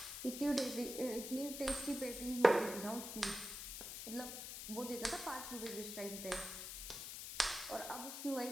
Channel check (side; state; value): left; noise; hiss, 7 dB below the sound